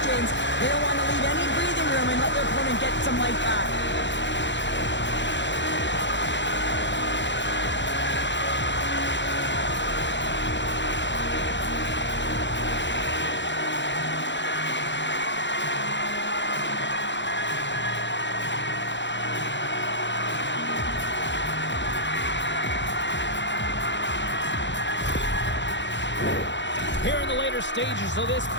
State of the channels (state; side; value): late; right; 0.53 ms